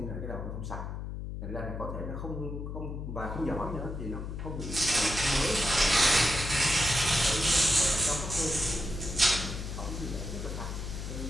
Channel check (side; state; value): left; noise; hum, 6 dB below the sound